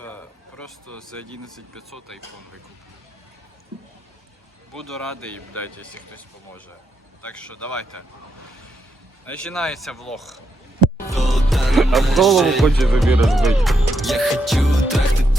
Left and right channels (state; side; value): normal; both; correlation 0.81